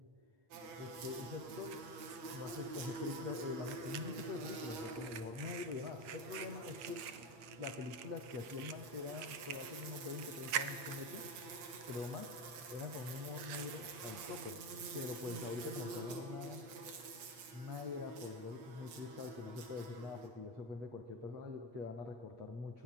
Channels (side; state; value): left; late; 8.5 ms